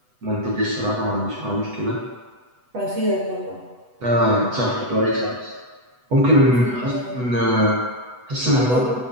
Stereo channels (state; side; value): late; left; 8.1 ms